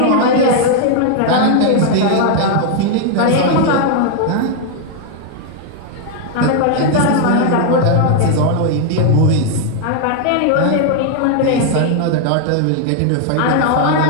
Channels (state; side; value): different; both; correlation 0.00